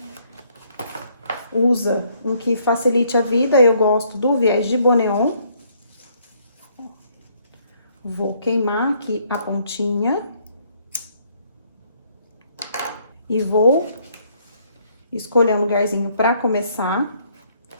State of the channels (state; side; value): inverted; both; correlation -0.68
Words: usa um que facilite a vida. Eu gosto do viés de Boneon. Vou queimar aqui a pontinha. E vou escolher um lugarzinho pra começar.